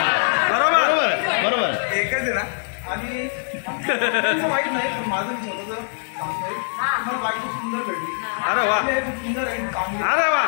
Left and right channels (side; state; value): right; silent; 64 dB below the other